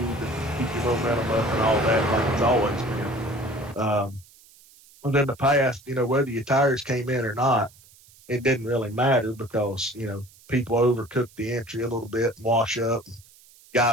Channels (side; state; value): right; noise; hiss, 26 dB below the sound